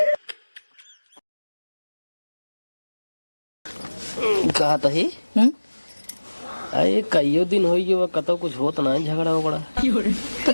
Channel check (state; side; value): inverted; both; correlation -1.00